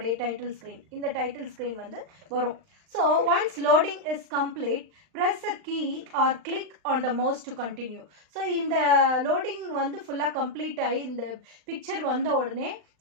டைட்டில் ஸ்க்ரீன் இந்த டைட்டில் ஸ்க்ரீன் வந்து வரும் so once loading is complete press a key or click on the mouse to continue so இந்த loading வந்து ஃபுல்லாக கம்ப்ளீட் ஆகி இந்த பிக்சர் வந்த உடனே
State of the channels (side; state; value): left; late; 39 ms